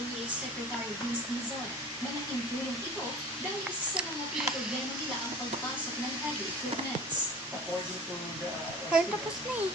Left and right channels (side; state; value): both; normal; correlation 0.42